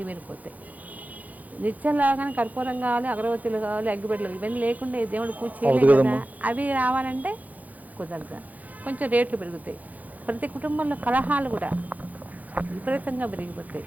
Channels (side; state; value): left; late; 0.078 ms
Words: నిత్యంలాగానే కర్పూరం కావాలి, అగరబత్తులు కావాలి, అగ్గిపెట్టలు, ఇవన్నీ లేకుండా దేవుడు పూజ చేయలేదు కదా. అవి రావాలంటే కుదరదు, కొంచెం రేట్లు పెరుగుతాయి. ప్రతి కుటుంబంలో కలహాలు కూడా విపరీతంగా పెరిగిపోతాయి.